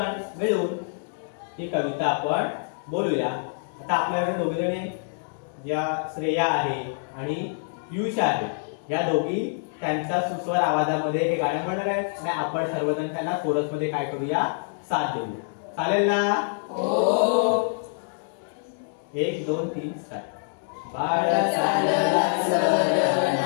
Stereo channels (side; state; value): right; silent; digital silence